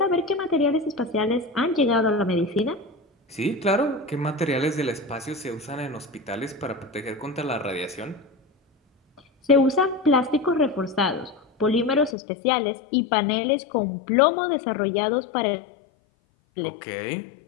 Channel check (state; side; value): drops out; right; at 12.2 s